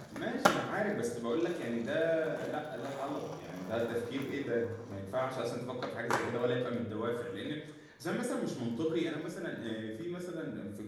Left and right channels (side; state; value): both; identical; correlation 1.00